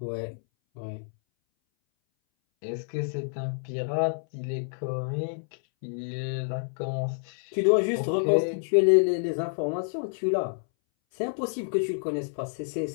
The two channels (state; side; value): silent; right; 59 dB below the other